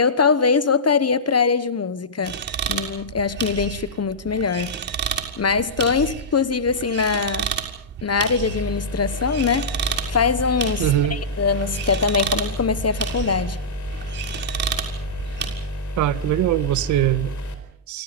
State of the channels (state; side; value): normal; both; correlation -0.14